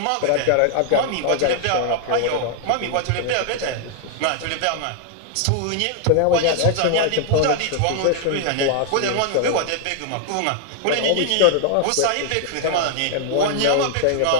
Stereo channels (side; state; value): both; different; correlation 0.00